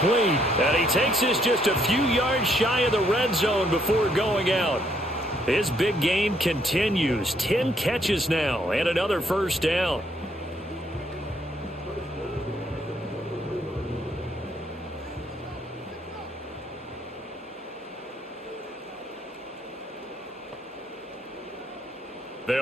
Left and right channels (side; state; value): both; normal; correlation 0.70